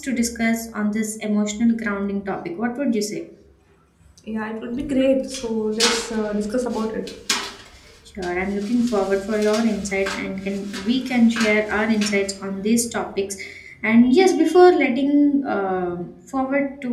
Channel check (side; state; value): both; identical; correlation 1.00